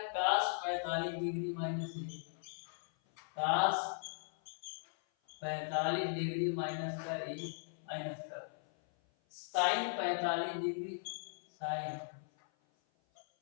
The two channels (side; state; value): right; silent; 52 dB below the other